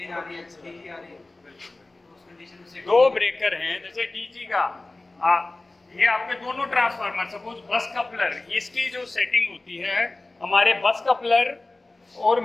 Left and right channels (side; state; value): right; quieter; 3.0 dB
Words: आ रही है, डीजी आ रही है, तो उस कंडीशन से 2 ब्रेकर हैं, जैसे डीजी का ये आपके दोनों ट्रांसफार्मर, सपोज बस कपलर, इसकी जो सेटिंग होती है हमारे बस कपलर और